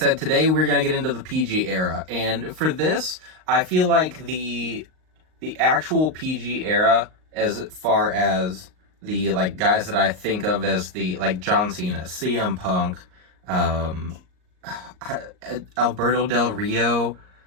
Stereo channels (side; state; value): left; late; 38 ms